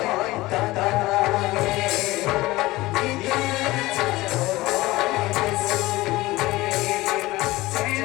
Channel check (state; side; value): quieter; right; 19.1 dB